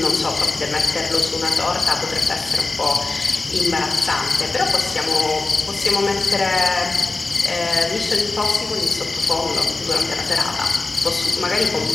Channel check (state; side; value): quieter; right; 3.5 dB